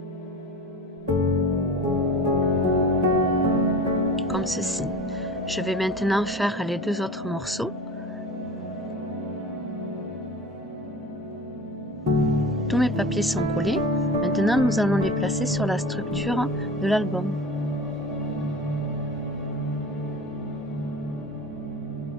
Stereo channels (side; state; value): both; normal; correlation 0.36